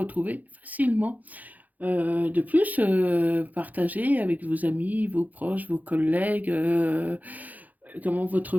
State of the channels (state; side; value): late; left; 0.080 ms